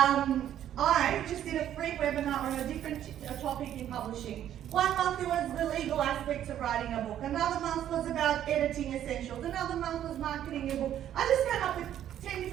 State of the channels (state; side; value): quieter; left; 11.0 dB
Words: I just did a free webinar on a different topic in publishing. One month it was the legal aspects of writing a book. Another month was about editing essentials. Another month was marketing your book. I just came up with 10